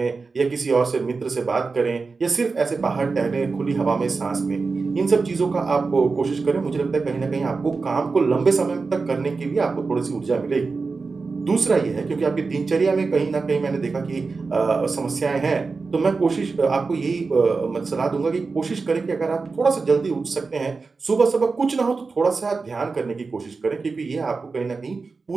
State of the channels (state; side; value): quieter; left; 4.3 dB